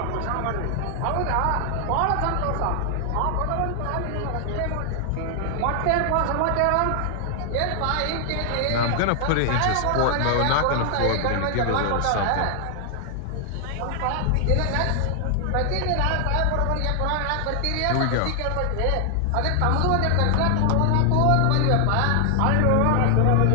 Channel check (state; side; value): different; both; correlation 0.00